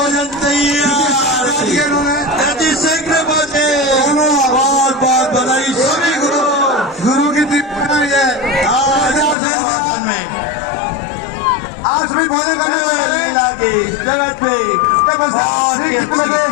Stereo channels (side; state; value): right; drops out; at 9.3 s